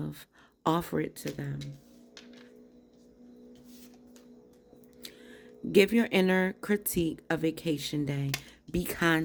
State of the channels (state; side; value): identical; both; correlation 1.00